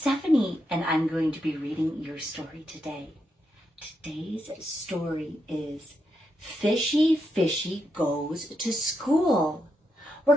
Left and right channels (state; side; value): normal; both; correlation 0.82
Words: and I'm going to be reading your story today. Today's story is Fishy Fishy Goes to School. We're